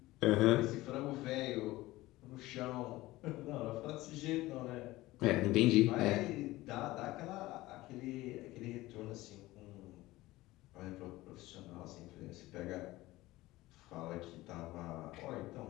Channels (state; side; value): quieter; right; 18.3 dB